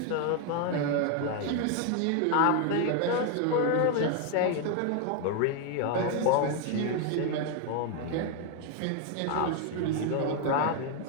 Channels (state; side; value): different; both; correlation 0.01